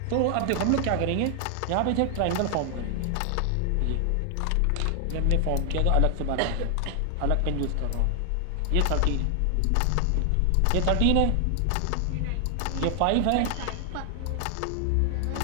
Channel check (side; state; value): both; different; correlation 0.00